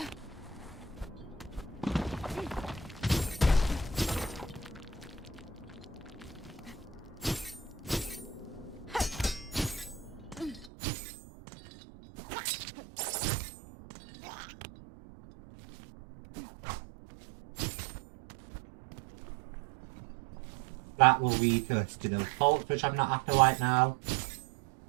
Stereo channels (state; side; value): drops out; left; at 10.7 s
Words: That will lead us to those bolts, which I'm not after right now.